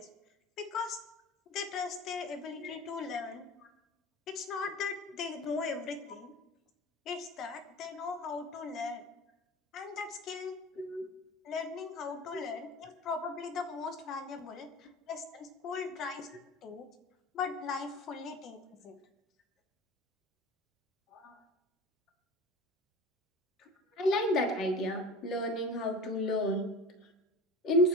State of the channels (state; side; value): normal; both; correlation 0.35